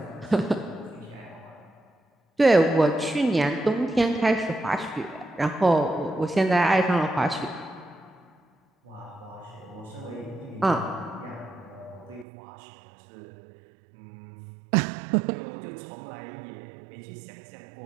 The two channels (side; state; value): left; drops out; at 12.2 s